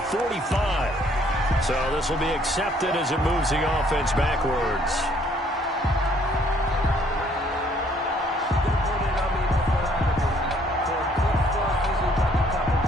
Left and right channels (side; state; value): both; normal; correlation 0.63